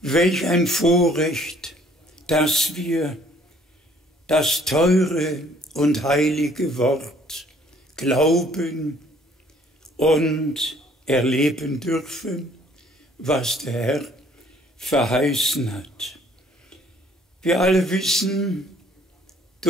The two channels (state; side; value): normal; both; correlation 0.59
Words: Welch ein Vorrecht, dass wir das teure und heilige Wort glauben und erleben dürfen, was der Herr verheißen hat. Wir alle wissen